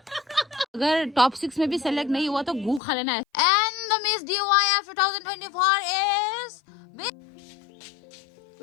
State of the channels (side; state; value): right; drops out; at 2.8 s